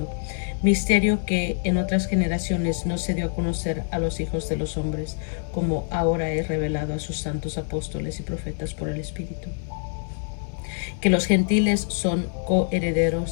misterio que en otras generaciones no se dio a conocer a los hijos de los hombres, como ahora he revelado a sus santos apóstoles y profetas por el Espíritu. Que los gentiles son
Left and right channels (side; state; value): right; silent; digital silence